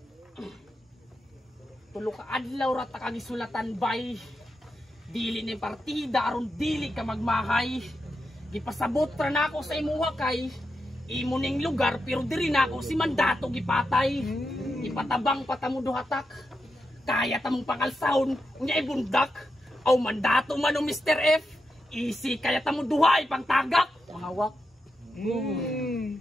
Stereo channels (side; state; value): both; normal; correlation 0.86